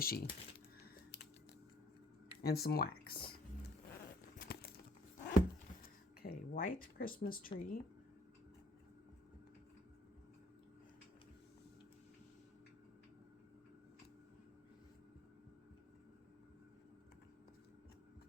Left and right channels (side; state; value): both; normal; correlation 0.59